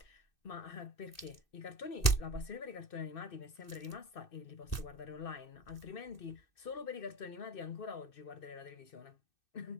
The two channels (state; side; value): late; right; 2.6 ms